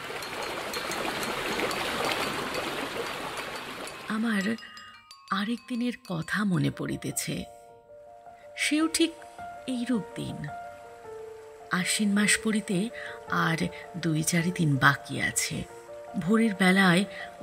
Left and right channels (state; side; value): identical; both; correlation 1.00